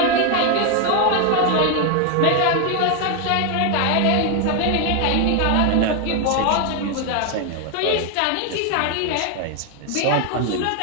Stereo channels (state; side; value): different; both; correlation 0.01